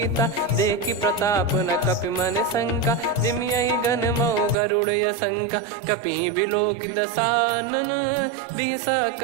देखी प्रताप न कपि मन शंका जिम यही गन मऊ गरुड़ शंका कपि बिलोक दसानन बिहसा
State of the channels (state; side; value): drops out; left; at 4.5 s